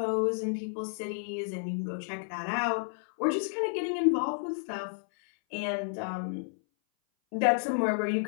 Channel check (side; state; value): right; silent; 57 dB below the other